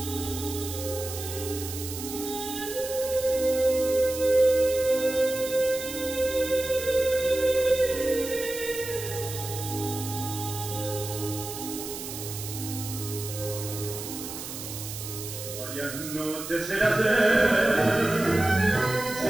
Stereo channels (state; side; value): noise; right; hiss, 9 dB below the sound